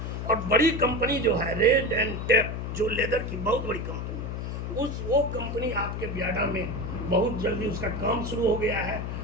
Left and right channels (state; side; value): noise; left; hum, 4 dB below the sound